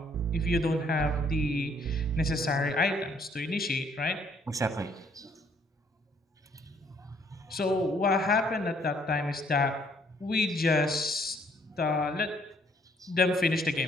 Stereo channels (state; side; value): normal; both; correlation 0.65